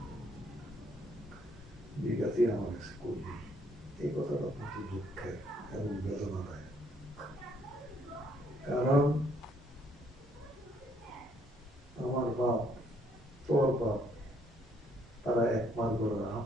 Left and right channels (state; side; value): normal; both; correlation 0.67